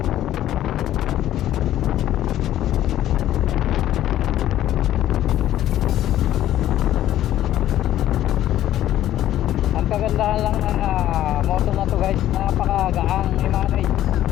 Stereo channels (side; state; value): right; quieter; 12.8 dB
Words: Ang kagandahan lang ng moto na to, guys, napakagaang i-manage.